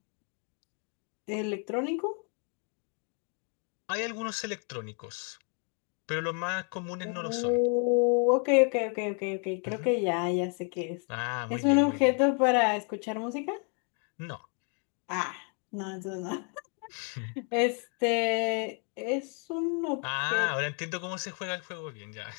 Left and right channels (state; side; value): quieter; right; 39.3 dB